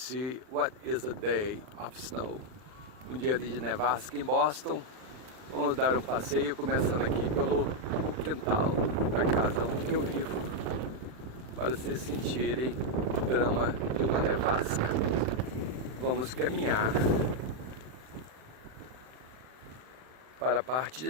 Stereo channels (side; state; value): left; late; 39 ms